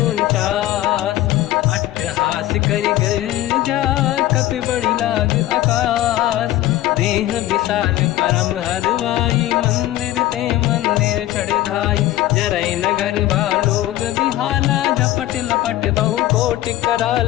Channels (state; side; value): quieter; right; 14.8 dB